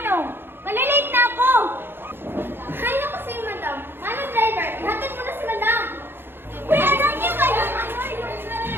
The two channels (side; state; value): left; late; 0.10 ms